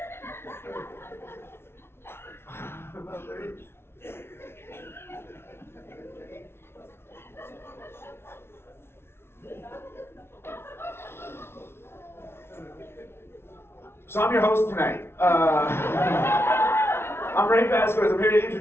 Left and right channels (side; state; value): right; late; 0.12 ms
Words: So I'm your host tonight. I'm Vazquez. I'm here to